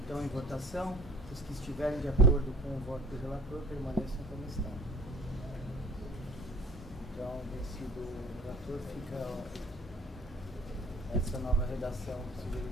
Então, em votação, os que estiverem de acordo com o voto do relator permaneçam como estão. Então, vencido o relator, fica essa nova redação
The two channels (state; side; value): normal; both; correlation 0.51